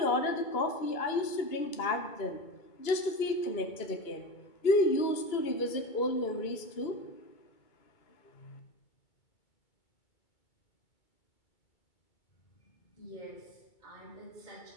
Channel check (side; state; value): right; late; 2.2 ms